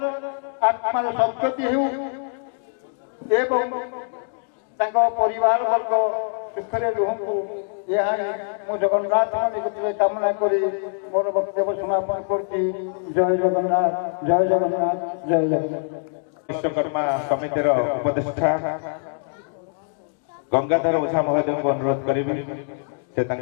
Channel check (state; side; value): silent; right; digital silence